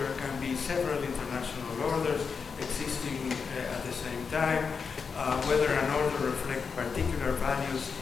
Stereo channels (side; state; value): right; quieter; 5.6 dB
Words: can be several international orders existing at the same time. Whether an order reflects particular values